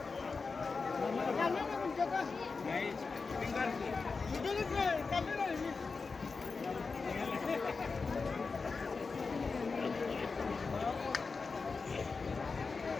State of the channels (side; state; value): right; quieter; 4.5 dB